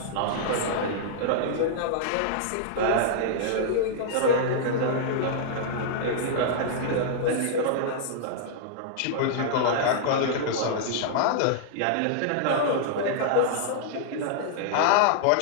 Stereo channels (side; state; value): both; different; correlation -0.02